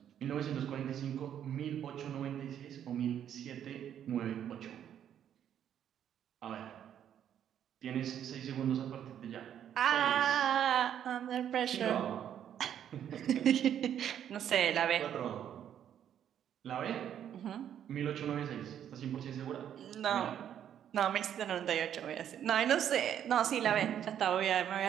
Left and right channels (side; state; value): left; quieter; 9.8 dB